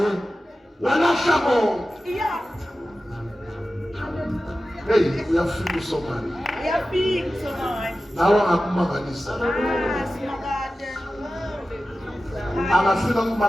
Walahla bonke. Yeah. Hey, uyafika uSomandla. Uyafika uSomandla. Nawe ngakumangalisa. Simakade. Angafika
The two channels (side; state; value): both; normal; correlation 0.94